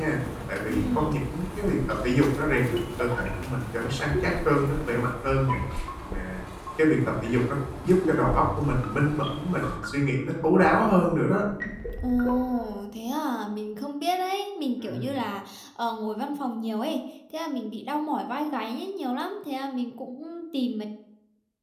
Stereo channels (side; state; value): both; identical; correlation 1.00